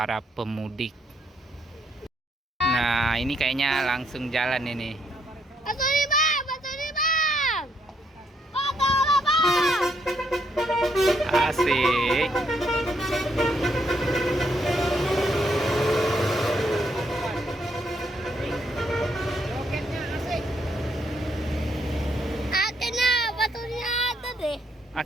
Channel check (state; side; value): normal; both; correlation 0.73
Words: pemudik. Nah, ini kayaknya langsung jalan ini. Bantu nih bang, bantu nih bang. Oh, tolong bang. Asik. Akhirnya batunya ada deh.